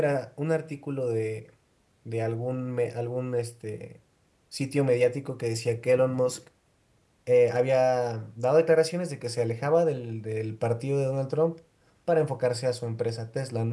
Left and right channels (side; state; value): both; identical; correlation 1.00